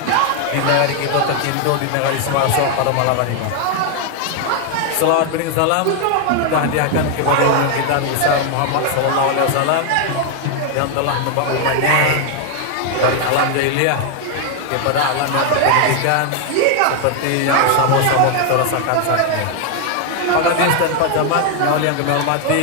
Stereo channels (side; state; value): both; different; correlation 0.01